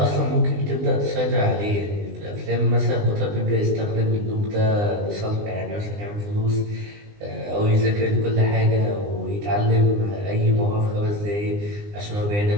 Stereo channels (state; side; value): late; left; 20 ms